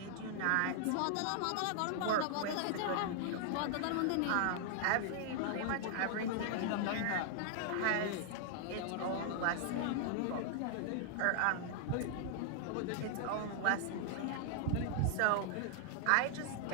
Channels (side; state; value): both; different; correlation 0.00